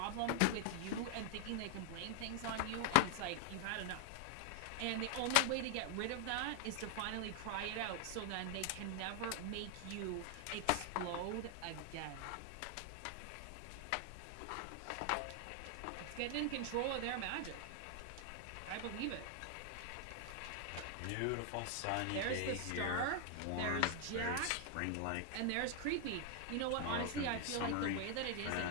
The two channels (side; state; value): both; different; correlation 0.00